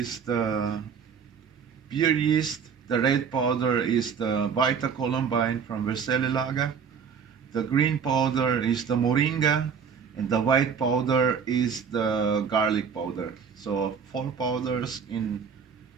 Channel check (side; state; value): left; quieter; 6.6 dB